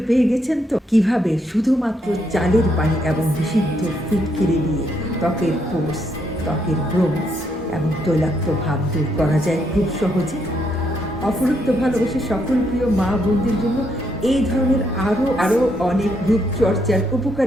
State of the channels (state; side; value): normal; both; correlation 0.76